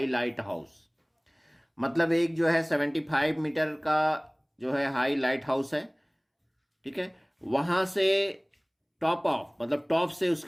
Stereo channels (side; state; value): both; identical; correlation 1.00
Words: lighthouse, मतलब एक जो है 75 मीटर का जो है हाई लाइट हाउस है, ठीक है, वहां से टॉप ऑफ मतलब टॉप से